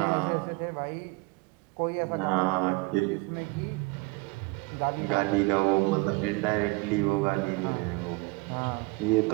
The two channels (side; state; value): left; quieter; 24.7 dB